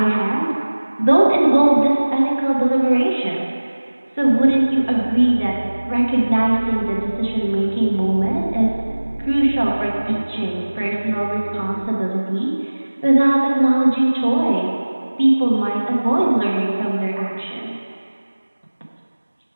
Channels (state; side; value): inverted; both; correlation -1.00